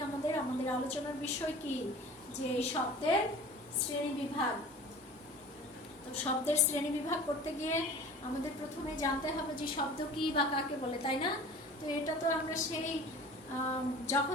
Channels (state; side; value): normal; both; correlation 0.41